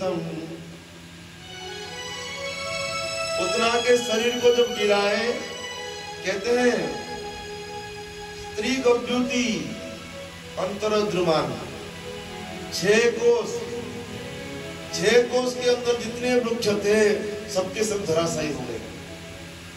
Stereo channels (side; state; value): both; identical; correlation 1.00